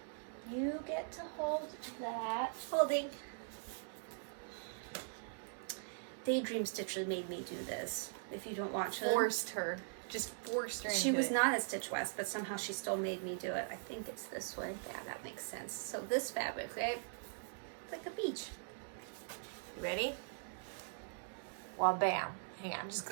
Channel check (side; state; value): left; silent; digital silence